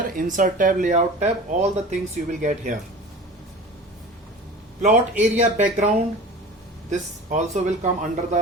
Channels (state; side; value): normal; both; correlation 0.37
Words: insert tab, layout tab, all the things you will get here. Plot area background, this also will come under